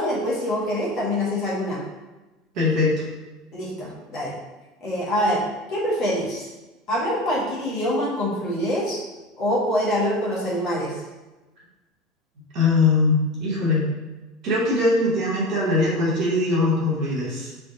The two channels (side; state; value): both; normal; correlation 0.31